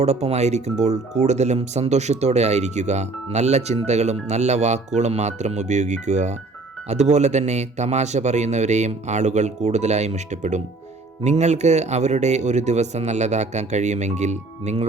കൂടുതലും സന്തോഷത്തോടെ ആയിരിക്കുക. നല്ല ചിന്തകളും നല്ല വാക്കുകളും മാത്രം ഉപയോഗിക്കുക. അതുപോലെ തന്നെ തമാശ പറയുന്നവരെയും ആളുകൾ കൂടുതലായും ഇഷ്ടപ്പെടും. നിങ്ങൾക്ക് അവരുടെ ഒരു ദിവസം നല്ലതാക്കാൻ കഴിയുമെങ്കിൽ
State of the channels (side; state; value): left; quieter; 3.5 dB